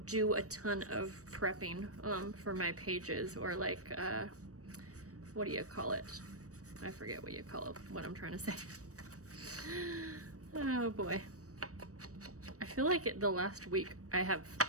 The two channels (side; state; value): left; late; 0.66 ms